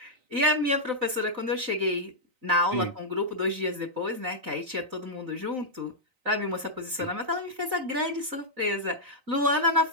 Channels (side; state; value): left; late; 3.9 ms